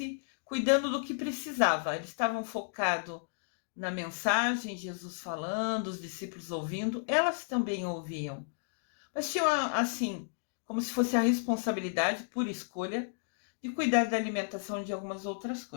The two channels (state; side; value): silent; right; digital silence